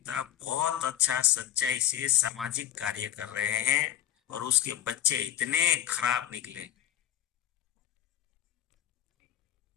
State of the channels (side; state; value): right; quieter; 11.7 dB